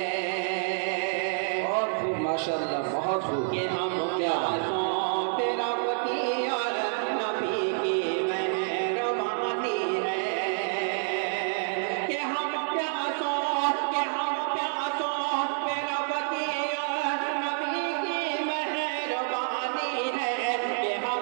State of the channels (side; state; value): left; silent; 59 dB below the other